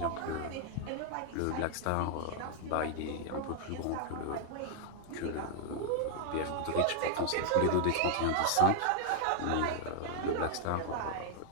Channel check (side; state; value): both; different; correlation 0.00